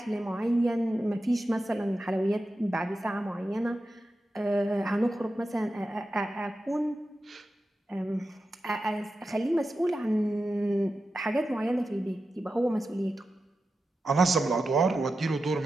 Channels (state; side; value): normal; both; correlation 0.91